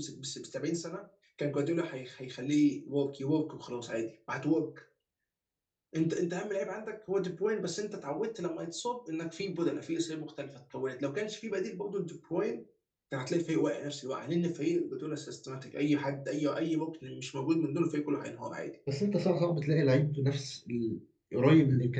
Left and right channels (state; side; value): identical; both; correlation 1.00